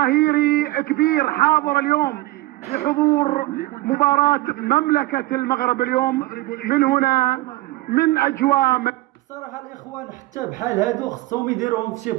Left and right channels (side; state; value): left; quieter; 18.6 dB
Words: كبير حاضر اليوم لحضور مباراة مملكة المغرب اليوم من هنا من أجواء. صراحة الإخوان حتى بحال هادو خصهم يديروهم في شي